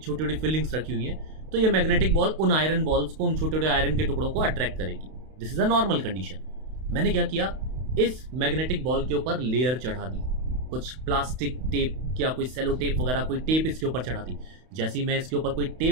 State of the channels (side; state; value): left; late; 32 ms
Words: छोटी फिलिंग्स रखी हुई हैं। तो ये मैग्नेटिक बॉल उन आयरन बॉल्स को, उन छोटे छोटे आयरन के टुकड़ों को अट्रैक्ट करेगी। This is a normal condition. मैंने क्या किया, इस मैग्नेटिक बॉल के ऊपर लेयर चढ़ा दी, कुछ प्लास्टिक टेप या कोई सेलो टेप वगैरह कोई टेप इसके ऊपर चढ़ा दी। जैसे ही मैं इसके ऊपर कोई